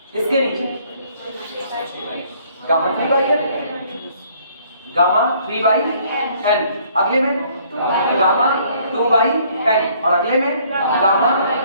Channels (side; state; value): both; inverted; correlation -0.62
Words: इसके नीचे गामा 3/n, गामा 3/n, अगले में गामा 2/n, और अगले में गामा